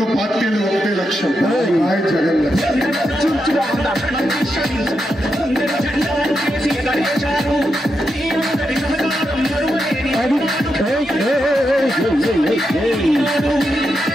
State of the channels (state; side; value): normal; both; correlation 0.85